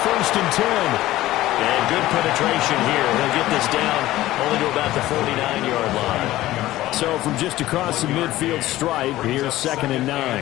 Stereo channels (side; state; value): right; quieter; 15.9 dB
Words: 1st and 10. And good penetration here. He'll get this down only to about the 49-yard line. So from just across the midfield stripe, here's 2nd and